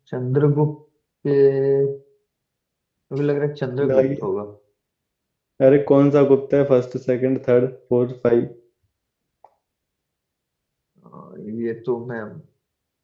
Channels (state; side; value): identical; both; correlation 1.00